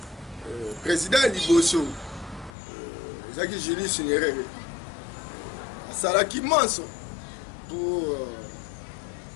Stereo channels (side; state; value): right; drops out; at 2.6 s